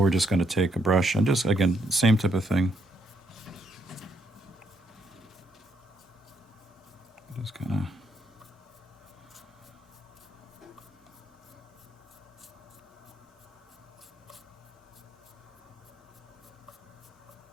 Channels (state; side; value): normal; both; correlation 0.74